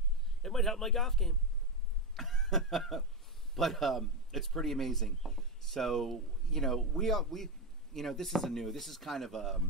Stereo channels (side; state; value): both; normal; correlation 0.11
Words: It might help my golf game. But it's pretty amazing. So, this is kind of